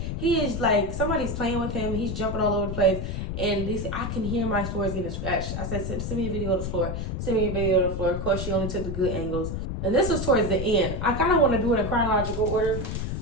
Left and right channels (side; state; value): left; noise; rumble, 4 dB below the sound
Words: he is like, somebody's playing with him. He's jumping all over the place. And they say, I can hear my floors getting scratched. I said, send me a video of the floor. Send me a video of the floor. Of course, she only took the good angles. And this was towards the end. I kind of want to do it in chronological order.